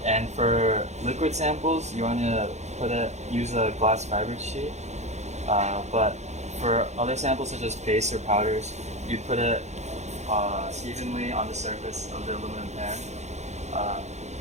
And for liquid samples, you want to use a glass fiber sheet. But for other samples such as paste or powders, you put it evenly on the surface of the aluminum pan.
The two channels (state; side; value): late; left; 0.33 ms